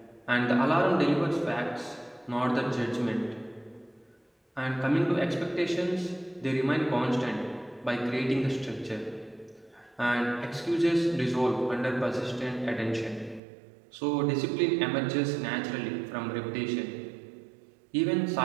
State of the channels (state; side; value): drops out; left; at 13.4 s